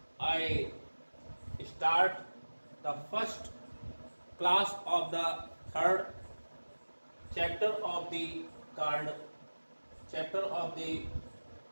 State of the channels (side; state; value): both; inverted; correlation -1.00